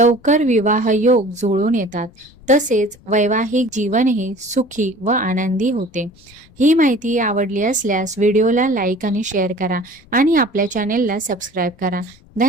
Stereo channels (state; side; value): noise; left; rumble, 27 dB below the sound